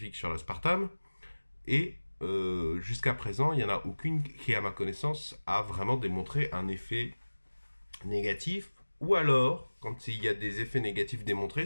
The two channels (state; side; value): inverted; both; correlation -1.00